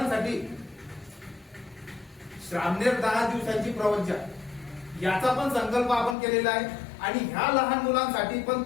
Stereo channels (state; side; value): drops out; right; at 6.2 s